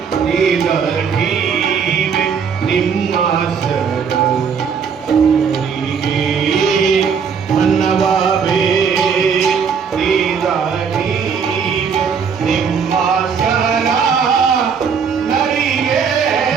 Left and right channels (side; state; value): left; quieter; 6.4 dB